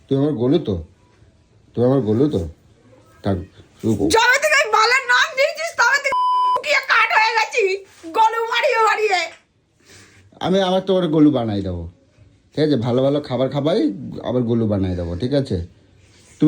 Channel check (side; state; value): both; identical; correlation 1.00